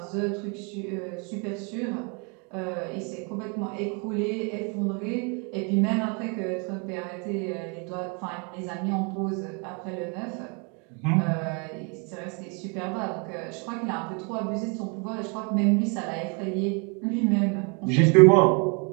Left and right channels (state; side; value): quieter; left; 34.5 dB